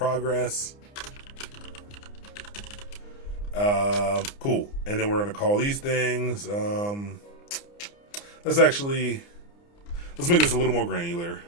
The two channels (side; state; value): right; late; 29 ms